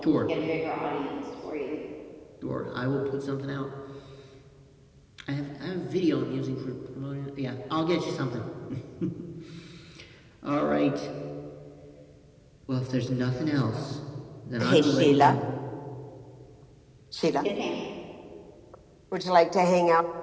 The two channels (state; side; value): identical; both; correlation 1.00